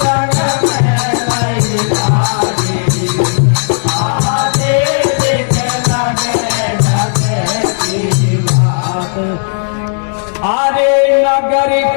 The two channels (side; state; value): right; silent; digital silence